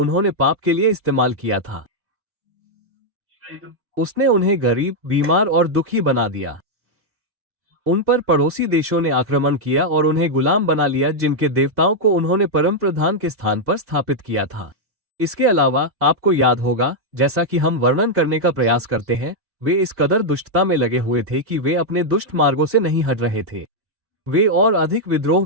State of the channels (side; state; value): left; late; 2.8 ms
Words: पाप के लिए इस्तेमाल किया था। उसने उन्हें गरीब, बीमार और दुखी बना दिया। उन पर पड़ोसी देशों ने आक्रमण किया और उन्हें गुलाम बना लिया जिनके देवताओं को उन्होंने परम प्रधान के स्थान पर स्थापित किया था। इसके अलावा आपको याद होगा, जैसा कि हम वर्णन करने का प्रयास करते हैं, वे इस कदर दुष्टता में लगे हुए थे कि वे अपने दुष्ट मार्गों से नहीं हट रहे थे। वे और अधिक विद्रोह